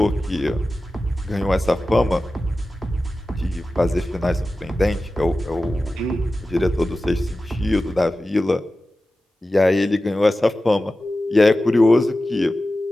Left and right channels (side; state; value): both; normal; correlation 0.94